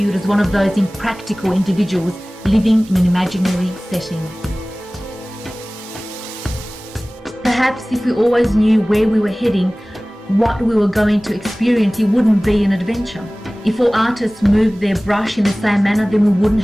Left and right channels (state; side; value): normal; both; correlation 0.98